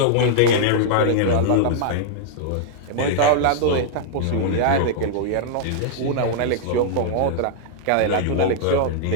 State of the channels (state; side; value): different; both; correlation -0.01